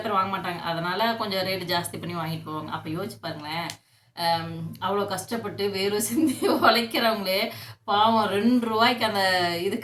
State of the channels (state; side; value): identical; both; correlation 1.00